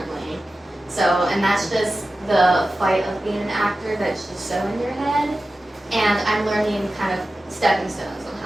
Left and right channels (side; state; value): both; normal; correlation 0.94